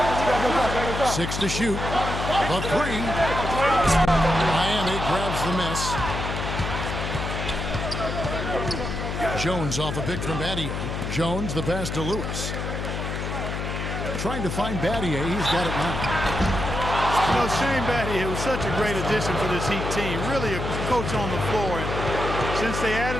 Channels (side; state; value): left; noise; hum, 4 dB below the sound